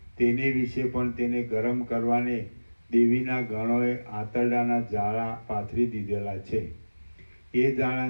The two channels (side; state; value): both; inverted; correlation -1.00